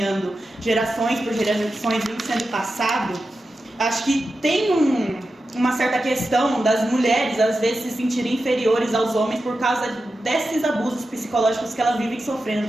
gerações por gerações, vem sendo passado, acho que tem uma certa questão das mulheres, às vezes, se sentirem inferiores aos homens por causa desses abusos psicológicos que elas vivem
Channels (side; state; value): both; normal; correlation 0.91